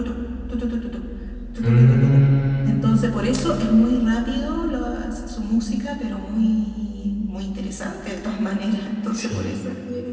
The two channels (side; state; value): both; identical; correlation 1.00